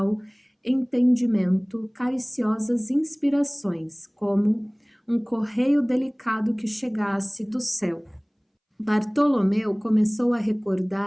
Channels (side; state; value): both; identical; correlation 1.00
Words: entendimento cariciosas inspirações, como um correio delicado que chegasse do céu. Bartolomeu começou a